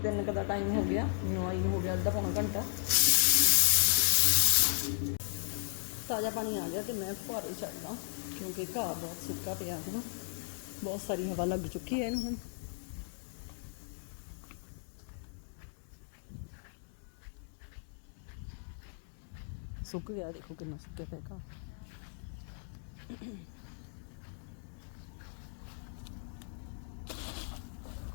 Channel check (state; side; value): silent; right; digital silence